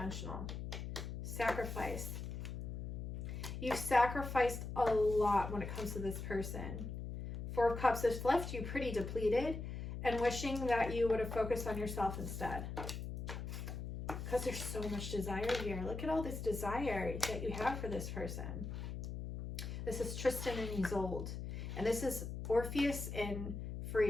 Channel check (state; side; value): noise; left; hum, 6 dB below the sound